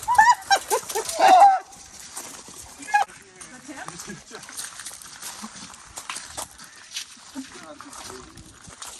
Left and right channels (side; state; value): both; identical; correlation 1.00